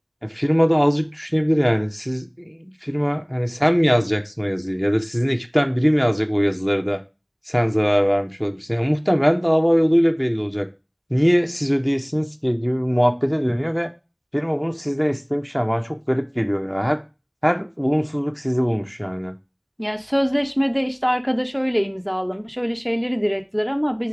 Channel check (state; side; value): identical; both; correlation 1.00